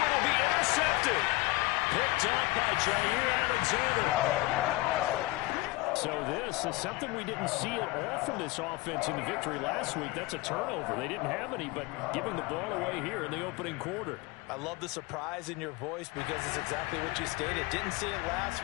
it'll be intercepted. Picked up by Jair Alexander. So this is something we didn't see at all from this offense in the victory last week. That's a turnover. They didn't have any, but giving the ball away here in the opening quarter. I love the surprise in your voice because it's exactly what you stated. Didn't see it last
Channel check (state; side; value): quieter; right; 21.3 dB